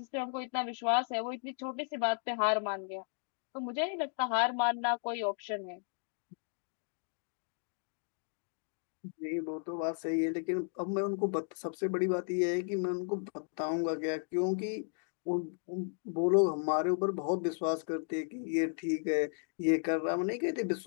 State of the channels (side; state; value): right; silent; 55 dB below the other